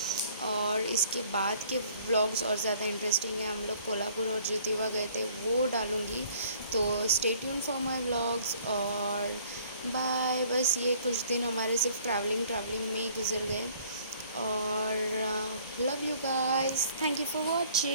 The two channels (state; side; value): inverted; both; correlation -0.57